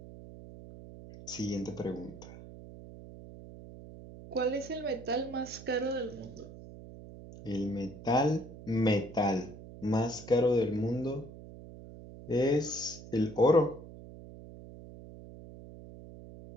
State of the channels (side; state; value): right; noise; hum, 15 dB below the sound